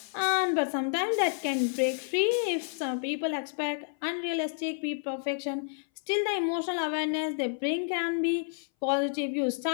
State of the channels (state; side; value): silent; right; 58 dB below the other